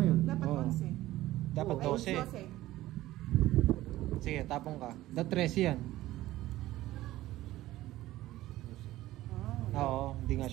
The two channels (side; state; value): left; quieter; 15.9 dB